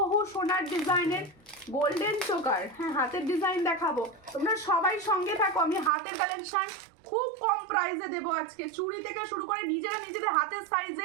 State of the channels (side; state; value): left; drops out; at 5.9 s